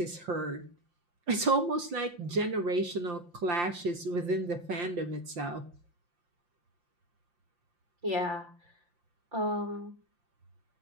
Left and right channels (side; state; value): left; late; 5.7 ms